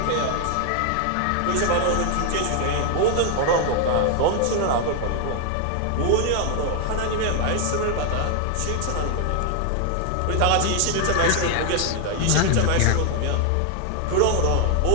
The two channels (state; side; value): different; both; correlation 0.00